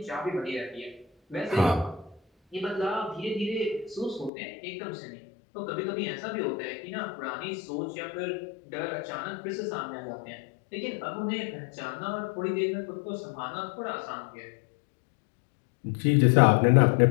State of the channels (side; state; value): right; drops out; at 4.3 s